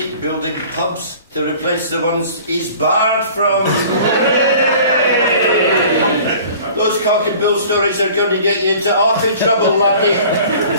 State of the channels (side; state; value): both; inverted; correlation -0.47